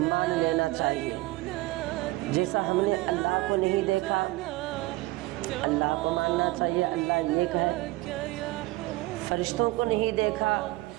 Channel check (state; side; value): quieter; left; 19.6 dB